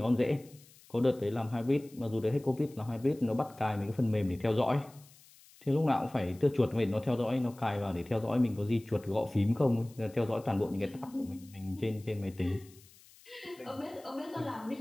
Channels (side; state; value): left; noise; hiss, 25 dB below the sound